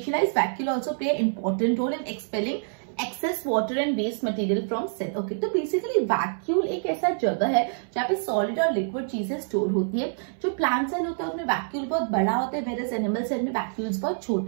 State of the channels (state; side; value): silent; left; 61 dB below the other